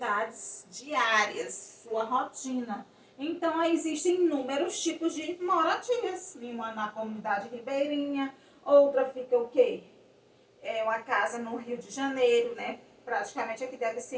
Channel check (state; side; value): identical; both; correlation 1.00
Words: diárias, sua rotina. Então, aí existem inúmeros tipos de moradias. Uma na comunidade ribeirinha, outra fica o quê? É uma casa no Rio de Janeiro, né? Praticamente aqui deve